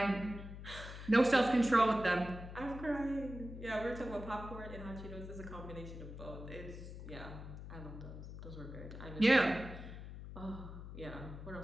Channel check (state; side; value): noise; left; hum, 11 dB below the sound